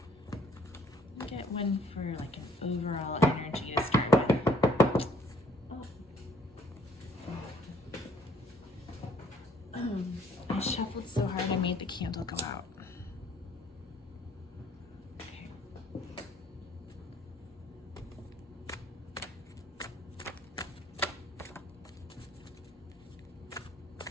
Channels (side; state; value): both; normal; correlation 0.59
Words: Get one for like an overall energy to start with. I shuffled so hard I made the candle go out.